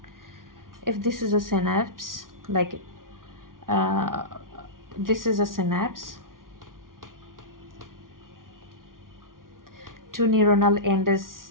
if this is a synapse, like this is a synapse, two neuronal end is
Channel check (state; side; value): late; left; 0.91 ms